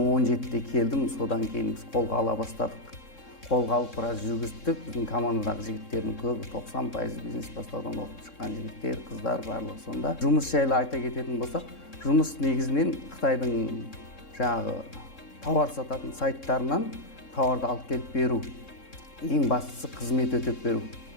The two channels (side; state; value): right; late; 3.7 ms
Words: келдім. Содан кейін біз қолға ала бастадық. Қолға алып біраз жүргіздік. Біздің командадағы жігіттердің көбі 90% бизнес бастаудан оқып шыққан жігіттер, қыздар барлығы сонда. Жұмыс жайлы айта кететін болсақ, жұмыс негізінен Қытайдың жаңағы тауар сататын сайттарынан тауарды алып келіп беру. Ең бастысы қызмет өтеп беру.